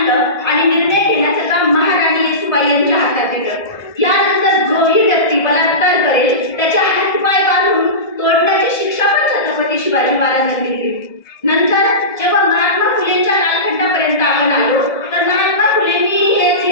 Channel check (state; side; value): late; right; 1.7 ms